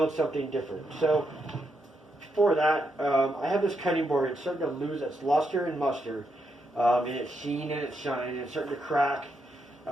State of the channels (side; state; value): both; normal; correlation 0.81